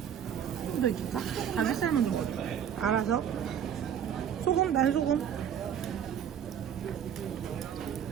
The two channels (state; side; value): quieter; left; 8.9 dB